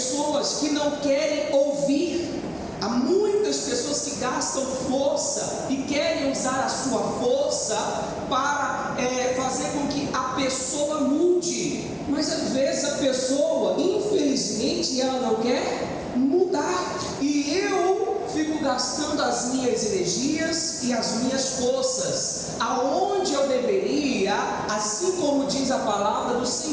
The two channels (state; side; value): identical; both; correlation 1.00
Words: que não querem ouvir. Há muitas pessoas que gastam força e querem usar a sua força para fazer com que a pessoa mude. Mas às vezes a pessoa, infelizmente, ela não quer mudar. E eu fico gastando as minhas energias e as minhas forças aonde eu deveria, assim como diz a palavra do